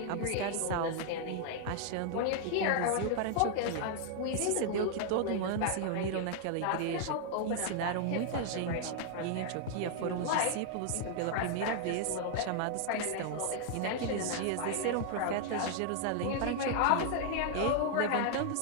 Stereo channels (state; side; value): different; both; correlation 0.00